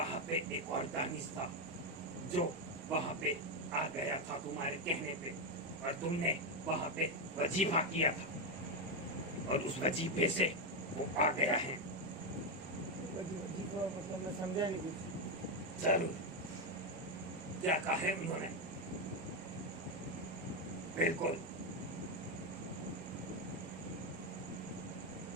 पे एक और दानिश था जो वहां पे आ गया था तुम्हारे कहने पे, और तुमने वहां पे वजीफा किया था और उस वजीफे से वो आ गया है। वजीफा मतलब मैं समझा नहीं कुछ। जरूर, क्या कहा है उन्होंने? बिल्कुल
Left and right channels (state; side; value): normal; both; correlation 0.07